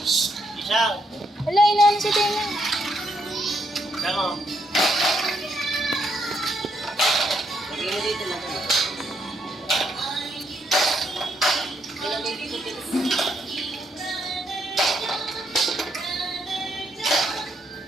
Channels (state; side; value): normal; both; correlation 0.76